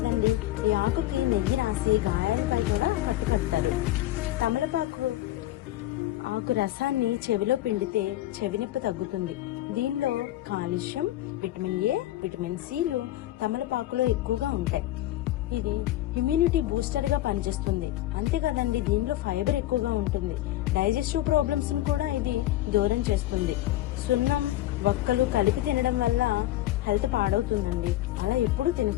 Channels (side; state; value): right; quieter; 15.0 dB